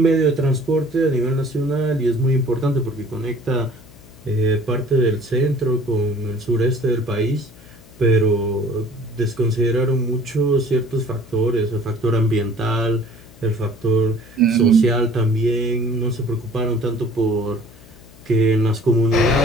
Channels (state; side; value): noise; left; hum, 23 dB below the sound